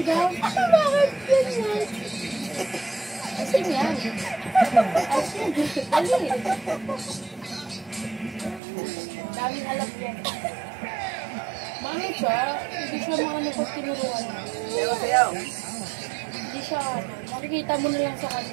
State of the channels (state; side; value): drops out; left; at 8.6 s